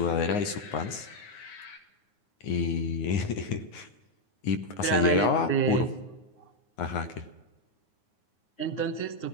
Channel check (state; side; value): late; right; 9.6 ms